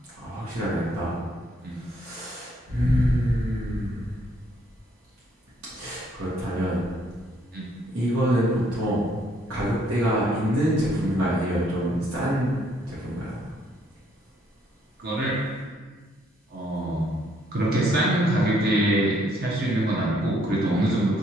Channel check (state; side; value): normal; both; correlation 0.68